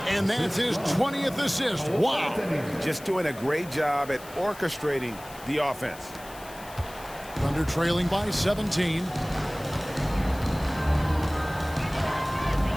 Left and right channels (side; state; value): left; noise; hiss, 18 dB below the sound